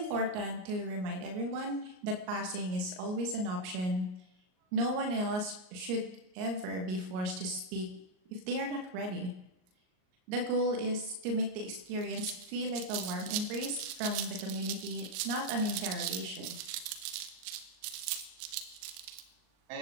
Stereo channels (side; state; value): left; late; 38 ms